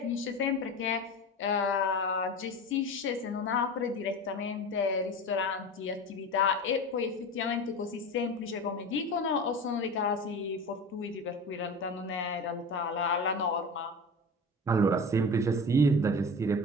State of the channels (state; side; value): normal; both; correlation 0.31